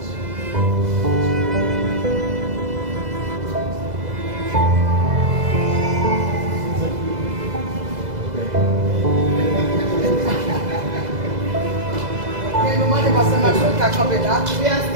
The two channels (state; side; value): late; left; 2.0 ms